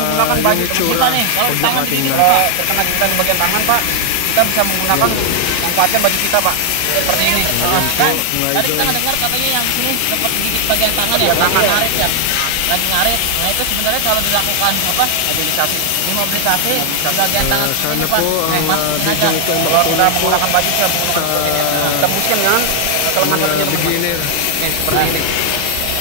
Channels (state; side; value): different; both; correlation 0.00